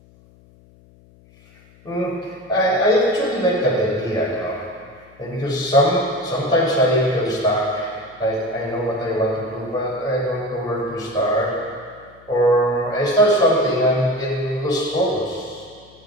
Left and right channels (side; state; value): left; noise; hum, 27 dB below the sound